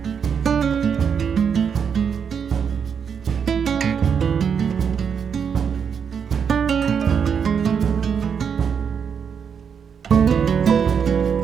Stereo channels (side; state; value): left; quieter; 7.0 dB